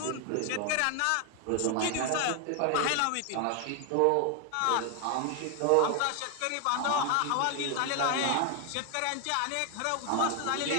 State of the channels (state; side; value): different; both; correlation 0.01